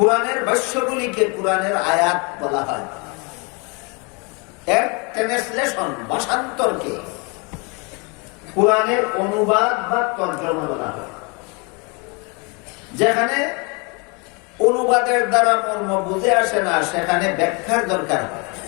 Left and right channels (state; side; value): quieter; right; 31.4 dB